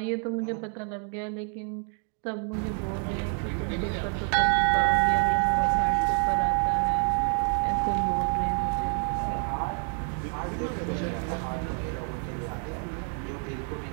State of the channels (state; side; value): quieter; left; 39.3 dB